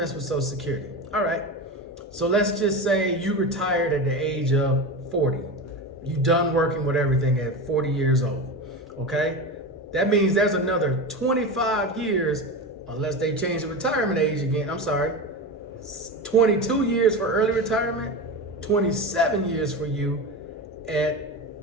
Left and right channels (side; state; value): both; normal; correlation 0.24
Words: with Social Security. All right. So let's just say you retired at the age of 40. You done working with everything at 40 years old, okay? That means there's another 25 years, unless they change the retirement age again. I'm sorry, 22 years for early retirement, 27 years for you at,